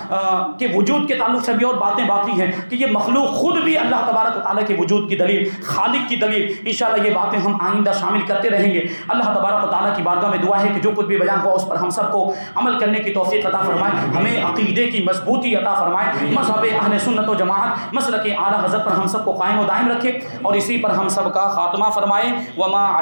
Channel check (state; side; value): inverted; both; correlation -1.00